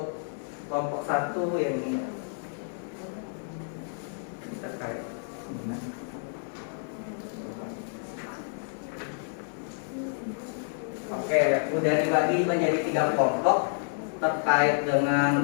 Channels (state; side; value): silent; right; 56 dB below the other